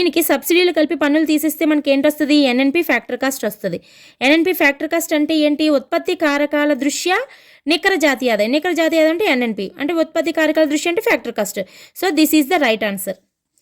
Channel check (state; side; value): identical; both; correlation 1.00